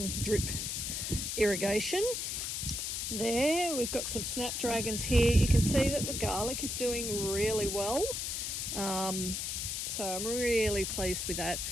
drip irrigation there. We've got some snapdragons here. You can see that the garlic is doing really well. So I'm really pleased with that.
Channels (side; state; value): left; noise; hiss, 2 dB below the sound